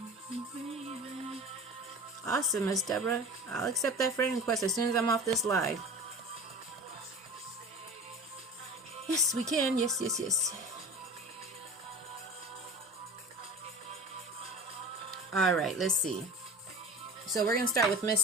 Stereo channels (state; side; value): normal; both; correlation 0.36